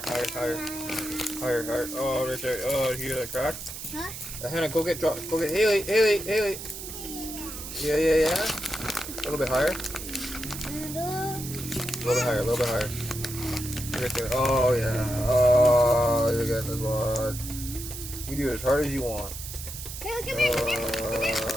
Higher. Oh, right there. Oh, you hear that crack? Huh? Hannah, go get Haley. Yeah. A little bit higher. A little bit higher. Right there. Oh, yeah. Oh, you're getting this one. You do it as hard as you want. Haley, come here.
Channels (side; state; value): right; noise; hiss, 9 dB below the sound